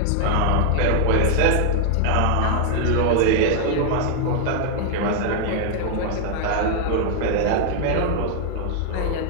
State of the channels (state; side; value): different; both; correlation 0.00